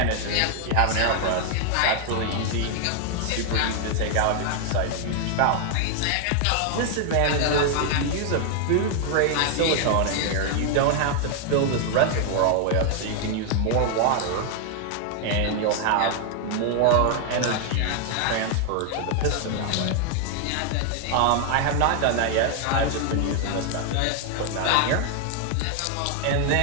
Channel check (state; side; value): different; both; correlation 0.00